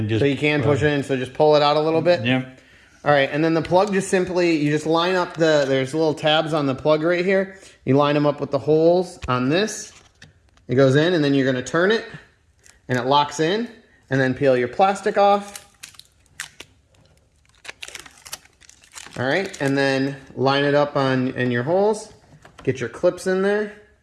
just... So you can push it in, so just pull it out a little bit. Yep. All right, and then the plug you just line up there's little tabs on the plug right here. You line them up with the holes on this. It goes in, and then you're going to turn it, and it locks in, and then peel your plastic off. All right, and then line it up in your holes. Get your clips in there.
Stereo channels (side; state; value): both; identical; correlation 1.00